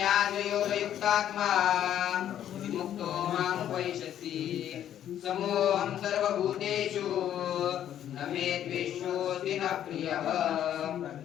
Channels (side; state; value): right; quieter; 10.7 dB